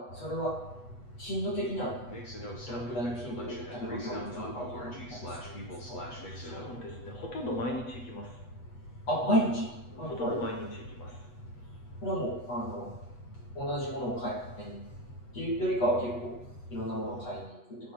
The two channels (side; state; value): right; late; 8.2 ms